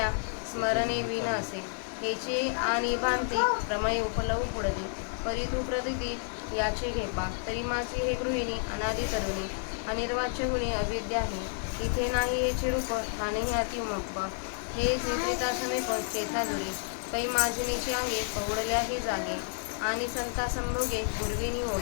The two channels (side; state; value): right; silent; 58 dB below the other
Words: स्मरणे विन असे हेची आणि भांती प्रमय उपलव पुढली परी तू प्रतीती याचे घेपा तरी माझी हे गृहिणी अनादी तरुणी अनिर्वाच्य गुणी अविद्या ही इथे नाही हेचे रूप ठाणेही अतिमप हे निद्रिता समेप चेता दुरी पै माजिनीची अंगे पवडल्याही जागे आणि संता संभोगे पूर्विनी